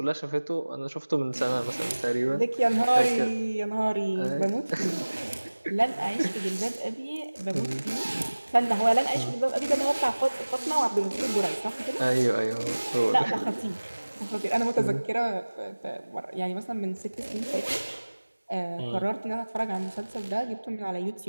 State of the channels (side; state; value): both; inverted; correlation -1.00